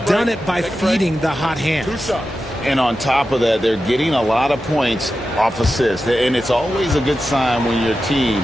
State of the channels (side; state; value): both; normal; correlation 0.92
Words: done it by feeding the hot hand. And on top of that, they're getting a lot of points off assists. And it's always a good sign when your